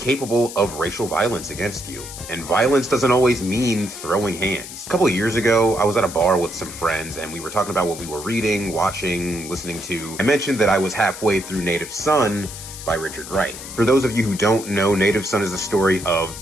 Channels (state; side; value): noise; left; hiss, 12 dB below the sound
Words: of racial violence against you. And violence doesn't always mean throwing hands. A couple of years ago, I was at a bar with some friends and we were talking about what we were reading, watching, listening to. I mentioned that I was halfway through Native Son by Richard Wright. For those of you who don't know, Native Son is a story of